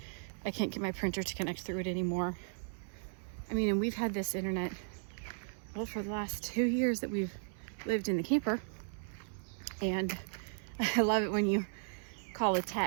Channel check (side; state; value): left; silent; 54 dB below the other